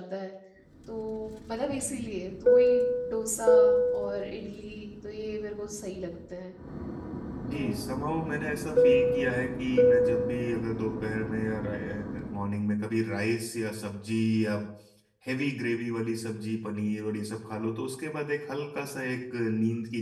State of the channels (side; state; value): both; identical; correlation 1.00